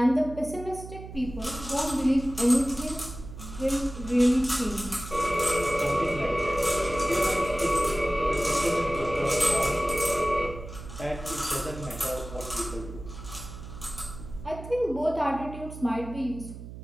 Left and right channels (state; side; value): noise; right; hum, 12 dB below the sound